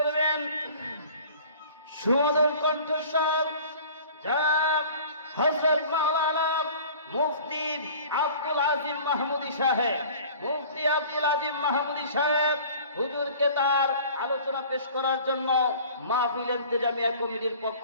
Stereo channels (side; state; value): both; inverted; correlation -0.46